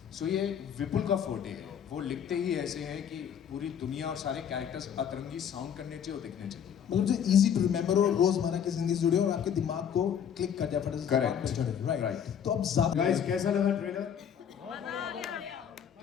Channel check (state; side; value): quieter; right; 8.4 dB